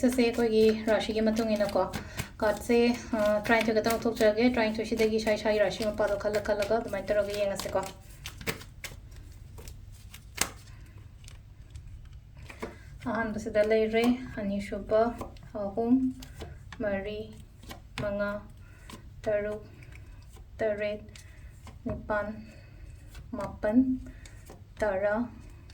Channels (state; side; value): identical; both; correlation 1.00